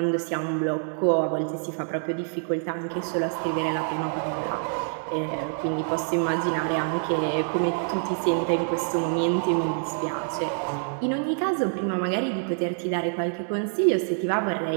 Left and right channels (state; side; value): silent; left; 61 dB below the other